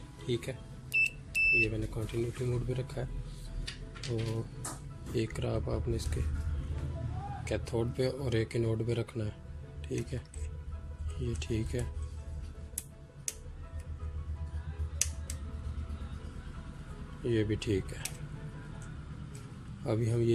ठीक है। ये मैंने कंटिन्यूटी मोड पे रखा है। तो एक राब आपने इसके कैथोड पे और एक एनोड पे रखना है, ठीक है। ये ठीक है। ये भी ठीक है। अभी हम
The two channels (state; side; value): identical; both; correlation 1.00